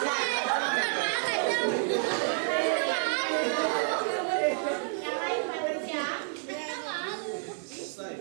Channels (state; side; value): silent; left; 58 dB below the other